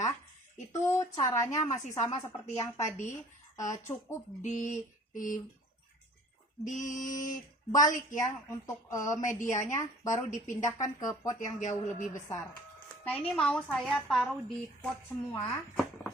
itu caranya masih sama seperti yang tadi. Cukup dibalik ya untuk medianya, baru dipindahkan ke pot yang jauh lebih besar. Nah, ini mau saya taruh di pot semua.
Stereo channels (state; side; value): normal; both; correlation 0.50